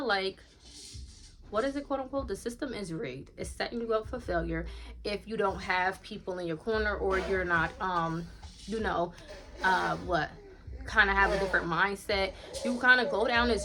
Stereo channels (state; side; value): identical; both; correlation 1.00